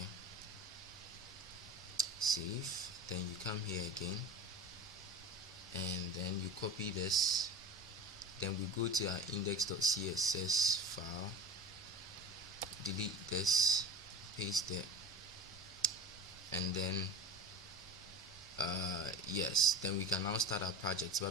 save, then you come here again and then you copy this, then we go to our index.css file, delete this, paste it, and then yes, then we can now start our project.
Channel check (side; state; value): both; normal; correlation 0.32